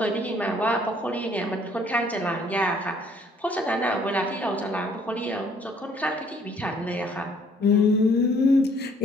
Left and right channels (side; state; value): both; normal; correlation 0.61